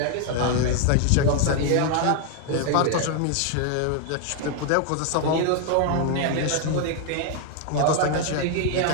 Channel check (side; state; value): both; different; correlation 0.00